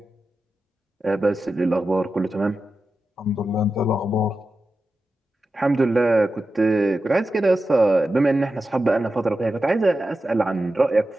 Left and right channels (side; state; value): both; normal; correlation 0.91